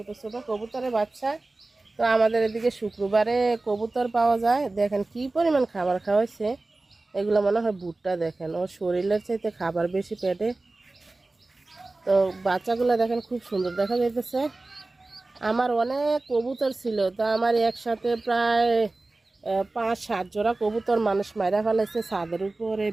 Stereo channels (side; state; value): left; quieter; 3.1 dB